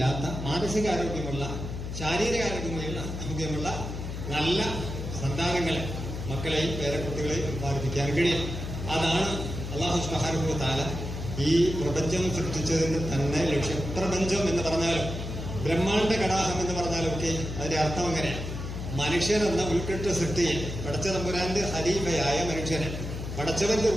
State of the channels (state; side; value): noise; left; hum, 6 dB below the sound